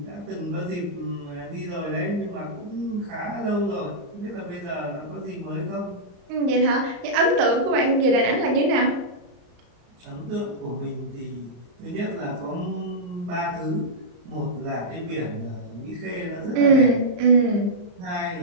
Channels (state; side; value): late; left; 34 ms